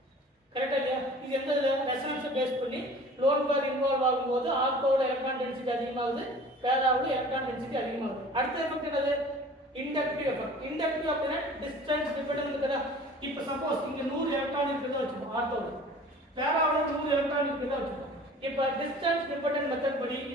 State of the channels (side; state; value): both; normal; correlation 0.45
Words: கரெக்டா இல்லையா? இது எந்த ரெசனன்ஸை பேஸ் பண்ணி லோன் பேர் இன்வால்வ் ஆகும்போது ஆர்த்தோட எலக்ட்ரான் டென்சிட்டி அதிகமாகுது, பேராவோட எலக்ட்ரான் டென்சிட்டி அதிகமாகுது. அடுத்த எஃபெக்ட் என்னது? Inductive effect. இண்டக்டிவ் அப்படினா டிஸ்டன்ஸ் டிபெண்டன்ட் இருக்குதா? இப்போ சப்போஸ் இங்க 100 எலக்ட்ரான் இருக்குதா வச்சுப்போம் ஆர்த்தோல. பேராவுல 100 எலக்ட்ரான் இருக்குதா வச்சுப்போம். இப்போ டிஸ்டன்ஸ் டிபெண்டன்ட் மெத்தட் படி